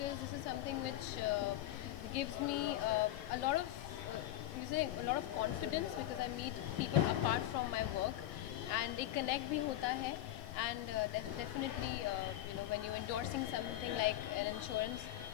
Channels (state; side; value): quieter; right; 13.8 dB